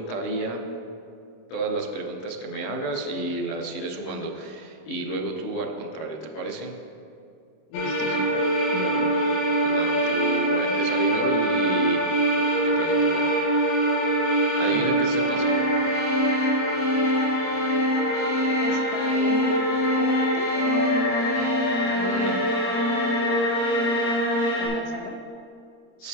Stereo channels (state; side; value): late; right; 26 ms